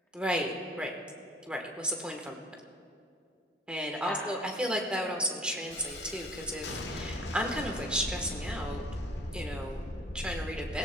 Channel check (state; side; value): normal; both; correlation 0.51